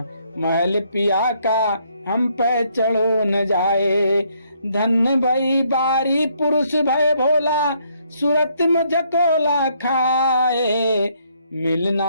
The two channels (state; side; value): inverted; both; correlation -0.70